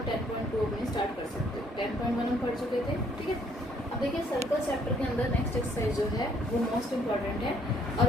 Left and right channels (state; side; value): normal; both; correlation 0.65